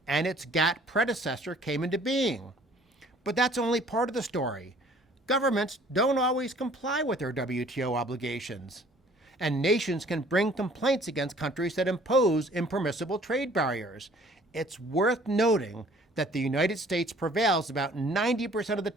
and its GATT predecessor came into being. But that's only part of the story. Governments don't always comply with their WTO obligations, and nations can bring complaints against countries that impose impermissible trade barriers. It's worth noting that the United States prevails about 90% of the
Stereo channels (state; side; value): normal; both; correlation 0.55